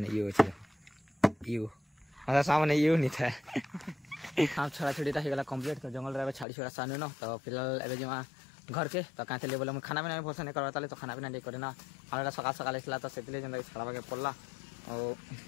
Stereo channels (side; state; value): right; drops out; at 6.5 s